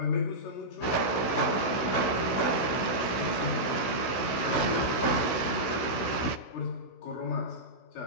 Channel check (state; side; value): late; right; 16 ms